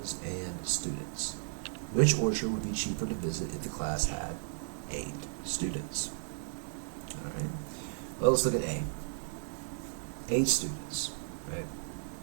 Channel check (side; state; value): left; silent; digital silence